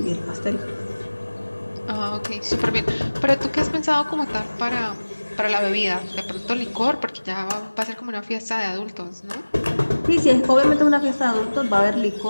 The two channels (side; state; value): both; inverted; correlation -1.00